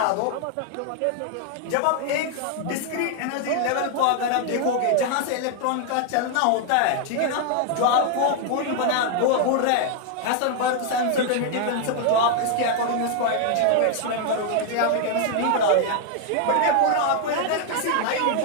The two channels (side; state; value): both; different; correlation 0.00